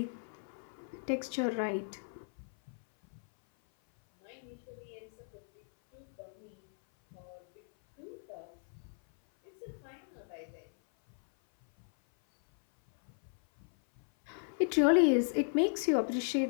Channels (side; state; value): right; silent; 54 dB below the other